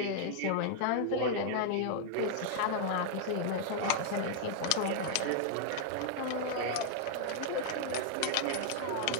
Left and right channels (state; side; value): different; both; correlation 0.00